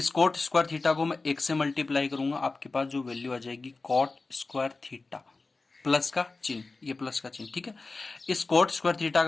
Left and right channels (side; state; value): right; quieter; 3.7 dB